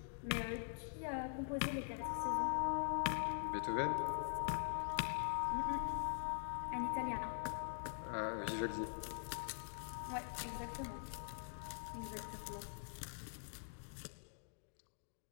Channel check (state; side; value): silent; right; digital silence